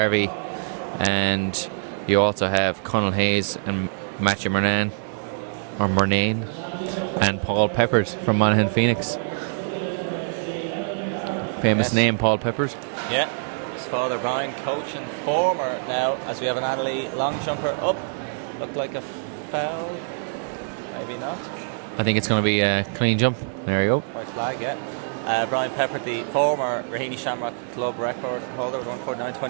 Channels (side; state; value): left; silent; digital silence